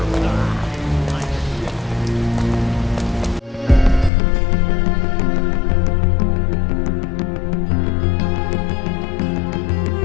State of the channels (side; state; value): right; drops out; at 4.1 s